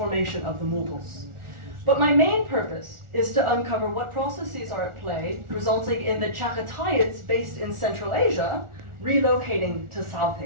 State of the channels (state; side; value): late; left; 1.4 ms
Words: of the Mughals. But my main purpose is to uncover what processes are at play, resulting in the Chaghatayids based in Central Asia relocating to South